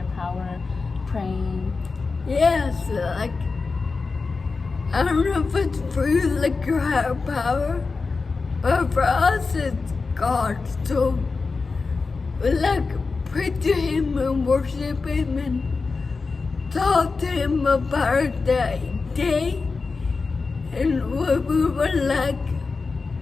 power, praying. Yes, like I don't know if it's for you, like your higher power, but for us, it's God. So we like pray to Him and worship Him and talk to Him about that day and what we would like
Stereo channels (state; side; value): quieter; right; 4.3 dB